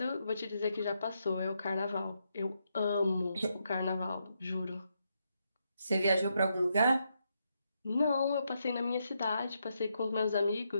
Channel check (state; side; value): inverted; both; correlation -0.81